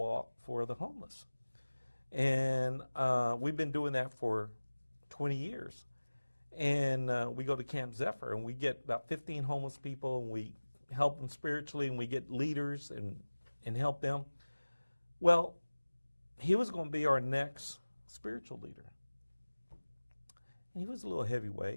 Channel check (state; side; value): inverted; both; correlation -1.00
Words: for the homeless. And we've been doing that for 20 years. And we go to Camp Zephyr, and we get about 15 homeless people, and we help them spiritually, and we get leaders and help them. Well, he was going to be our next spiritual leader. And he was a little